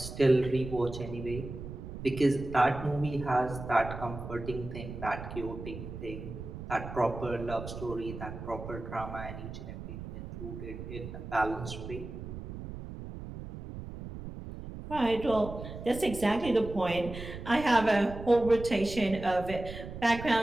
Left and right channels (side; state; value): right; noise; rumble, 10 dB below the sound